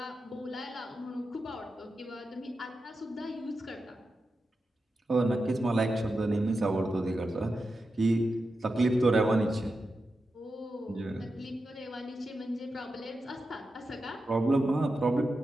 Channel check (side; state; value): both; normal; correlation 0.90